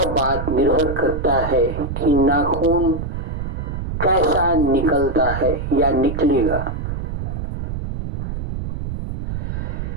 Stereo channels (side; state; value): right; noise; rumble, 4 dB below the sound